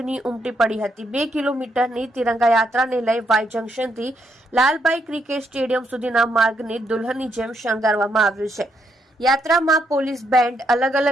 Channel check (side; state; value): both; normal; correlation 0.76